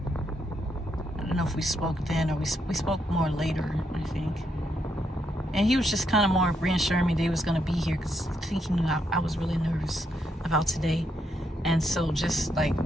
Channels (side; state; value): both; normal; correlation 0.78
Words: I don't know if we spoke then or we spoke more later, I think. And he was just kind of more reassuring me that he was going to be here, because I think he knew I was really nervous about today. And so just like,